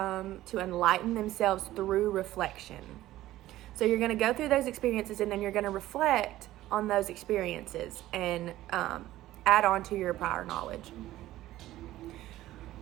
to enlighten themselves through reflection. So you're going to go through those experiences and then you're going to reflect on those experiences and add on to your prior knowledge.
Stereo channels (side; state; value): left; quieter; 15.1 dB